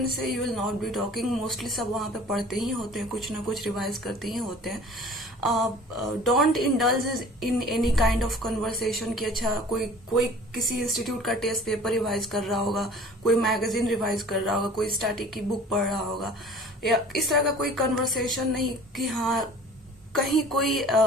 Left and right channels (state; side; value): normal; both; correlation 0.46